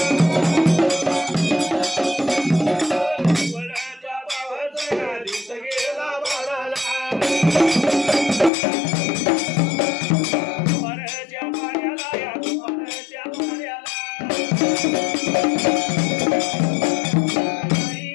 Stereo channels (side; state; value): right; drops out; at 8.5 s